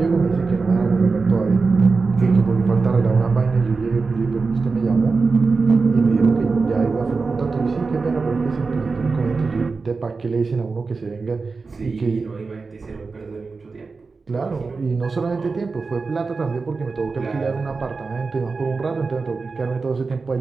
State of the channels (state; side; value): quieter; left; 4.3 dB